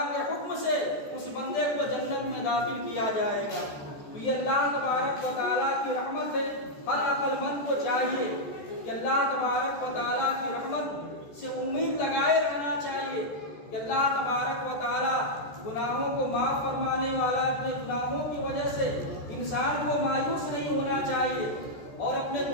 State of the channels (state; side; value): late; right; 14 ms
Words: کے حکم سے اس بندے کو جنت میں داخل کیا جائے گا۔ تو یہ اللہ تبارک و تعالیٰ کی رحمت ہے۔ ہر عقل مند کو چاہیے کہ اللہ تبارک و تعالیٰ کی رحمت سے امید لگائے رہنا چاہیے کہ اللہ تبارک و تعالیٰ گناہوں کو معاف فرمانے والا، اپنے گناہوں کی وجہ سے انسان کو مایوس نہیں ہونا چاہیے اور اپنے